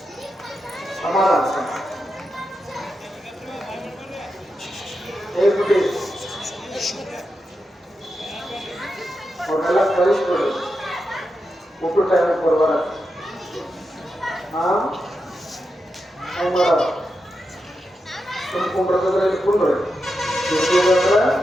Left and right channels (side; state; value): both; normal; correlation 0.87